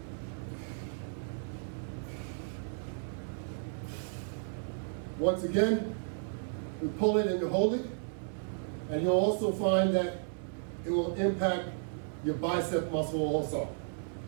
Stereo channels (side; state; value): left; silent; 55 dB below the other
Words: Once again, you pull it and you hold it, and you'll also find that it will impact your bicep muscle also.